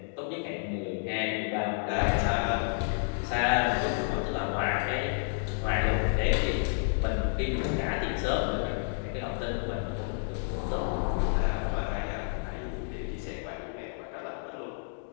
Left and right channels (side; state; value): right; silent; digital silence